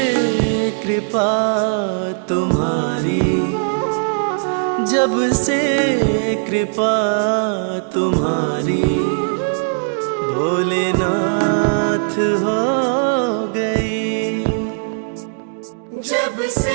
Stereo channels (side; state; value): left; silent; digital silence